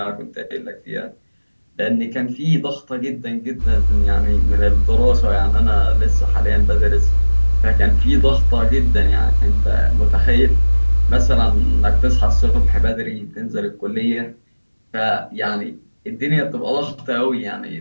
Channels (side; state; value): both; inverted; correlation -1.00